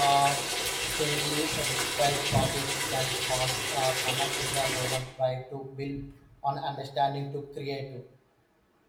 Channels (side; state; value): both; identical; correlation 1.00